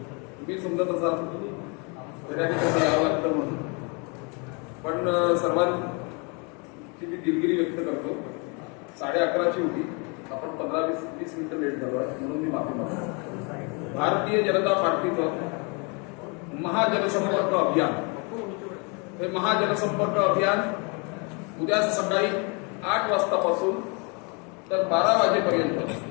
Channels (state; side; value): quieter; right; 32.8 dB